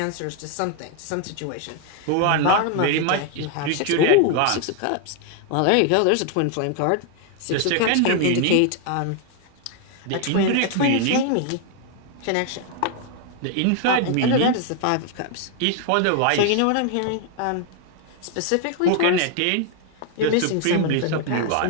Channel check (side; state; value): both; different; correlation 0.00